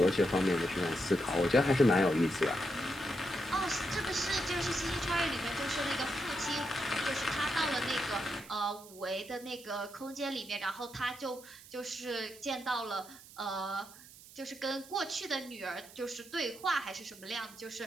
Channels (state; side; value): noise; right; hiss, 19 dB below the sound